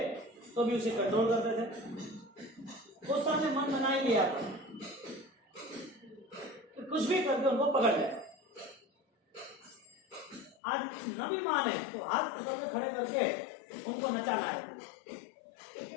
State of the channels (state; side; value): drops out; right; at 10.6 s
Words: तो भी उसे कंट्रोल करते थे। उस समय मन बना ही लिया था कि कुछ भी करके उनको पकड़ ले। आज न भी माने तो हाथ पकड़ के खड़े करके उनको नचाना है।